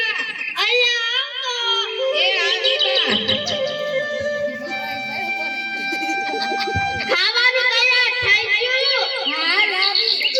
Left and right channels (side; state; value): both; identical; correlation 1.00